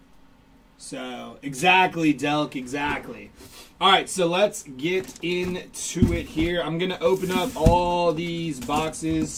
So exactly, Delk, exactly. All right, so let's get into it here. I'm going to open up all these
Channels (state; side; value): identical; both; correlation 1.00